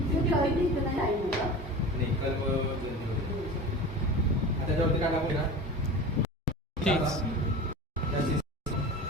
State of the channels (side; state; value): both; normal; correlation 0.33